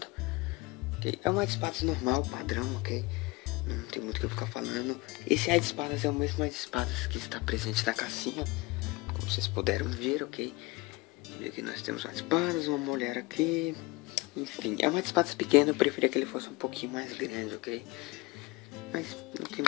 ok? É um White Spades normal, padrão, ok? Não tem muito o que eu ficar falando. Esse White Spades é o mesmo White Spades que está presente na cassinha, como vocês puderam ver, ok? E aqui nós temos White Spades, uma mulher aqui. Enfim, é uma espada pequena, eu preferia que ele fosse um pouquinho mais grande, ok? Mas não tem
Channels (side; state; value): right; quieter; 23.3 dB